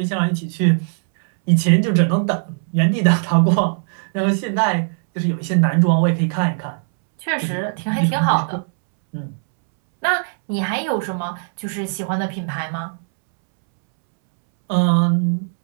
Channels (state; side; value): silent; left; 66 dB below the other